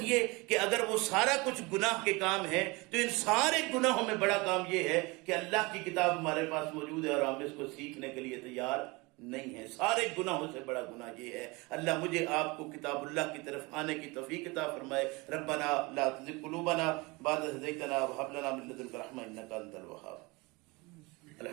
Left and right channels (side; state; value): left; quieter; 25.1 dB